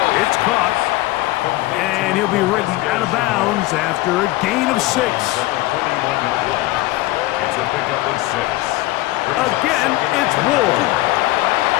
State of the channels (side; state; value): right; quieter; 18.4 dB